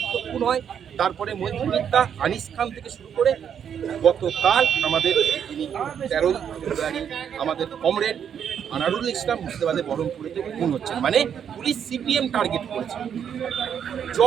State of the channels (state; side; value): quieter; left; 8.3 dB